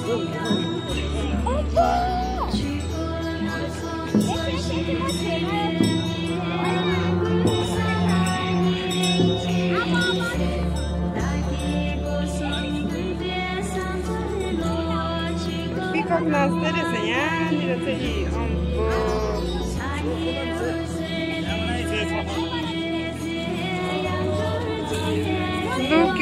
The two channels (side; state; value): both; identical; correlation 1.00